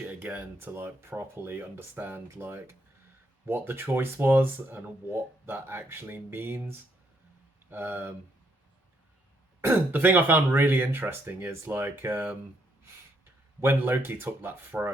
it again to like properly understand like what the choice was and what that actually means. The thing I found really interesting is like when Loki took that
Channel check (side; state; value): both; normal; correlation 0.73